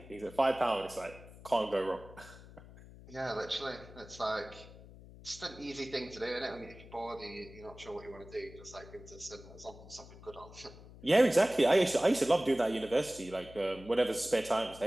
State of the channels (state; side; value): noise; left; hum, 18 dB below the sound